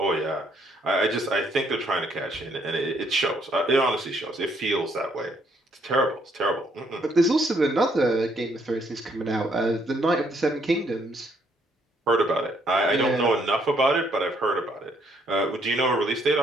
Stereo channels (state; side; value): normal; both; correlation 0.70